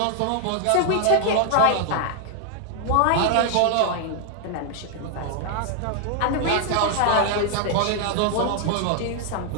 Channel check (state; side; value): different; both; correlation 0.00